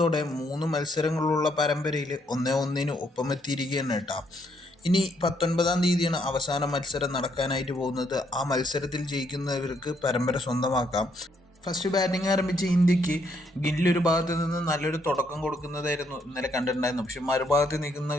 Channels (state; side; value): normal; both; correlation 0.73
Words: 3 മത്സരങ്ങളുള്ള പരമ്പരയിൽ 1-1 ഒപ്പമെത്തിയിരിക്കുകയാണ് കേട്ടോ. ഇനി 19-ാം തീയതിയാണ് അവസാന മത്സരം നടക്കാനായിട്ട് പോകുന്നത്. ആ മത്സരത്തിൽ ജയിക്കുന്നവർക്ക് പരമ്പര സ്വന്തമാക്കാം. ഫസ്റ്റ് ബാറ്റിംഗ് ആരംഭിച്ച ഇന്ത്യക്ക് ഗില്ല് ഒരു ഭാഗത്ത് നിന്ന് നല്ലൊരു തുടക്കം കൊടുക്കുന്നതായിരുന്നു ഇന്നലെ കണ്ടിട്ടുണ്ടായിരുന്നു. പക്ഷെ മറുഭാഗത്ത്